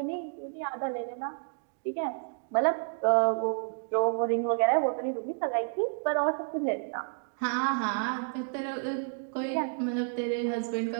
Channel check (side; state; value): left; silent; digital silence